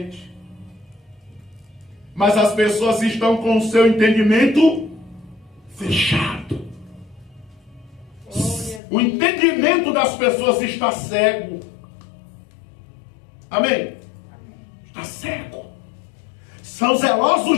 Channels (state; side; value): drops out; right; at 8.8 s